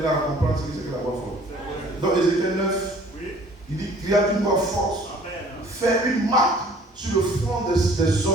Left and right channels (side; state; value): both; normal; correlation 0.53